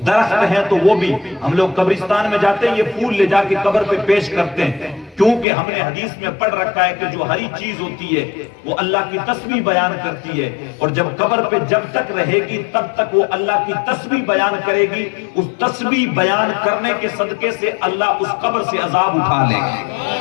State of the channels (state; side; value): drops out; right; at 5.5 s